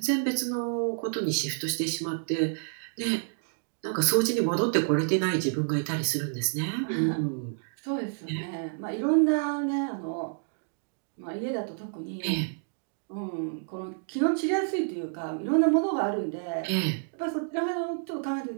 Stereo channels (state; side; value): silent; left; digital silence